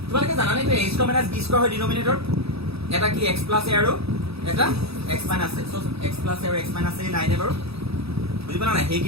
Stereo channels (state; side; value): late; left; 0.77 ms